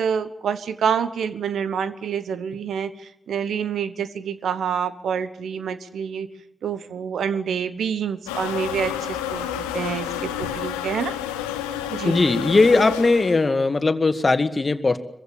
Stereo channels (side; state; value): both; normal; correlation 0.78